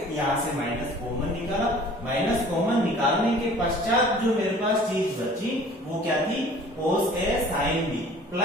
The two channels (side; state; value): both; normal; correlation 0.49